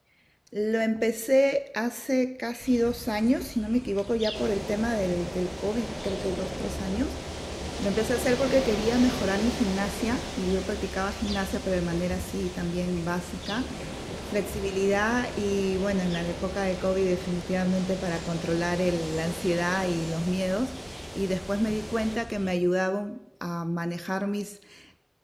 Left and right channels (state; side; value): identical; both; correlation 1.00